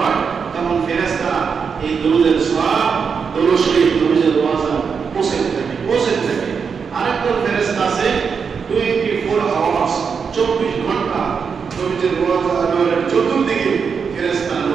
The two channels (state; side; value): quieter; left; 6.0 dB